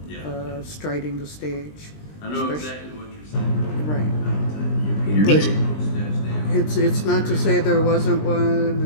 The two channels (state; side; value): late; right; 20 ms